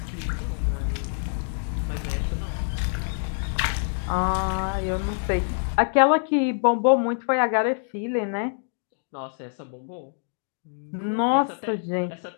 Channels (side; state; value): right; silent; digital silence